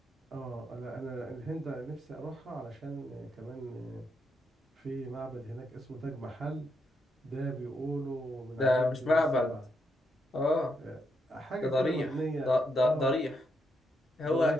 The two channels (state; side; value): normal; both; correlation 0.80